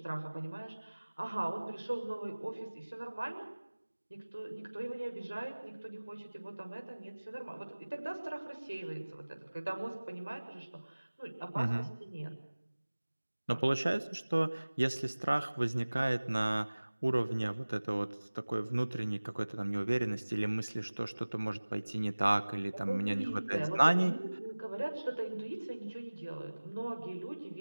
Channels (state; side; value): inverted; both; correlation -1.00